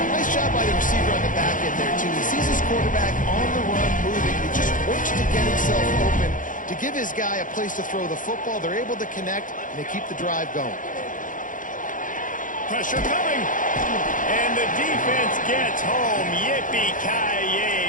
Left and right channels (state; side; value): late; right; 0.38 ms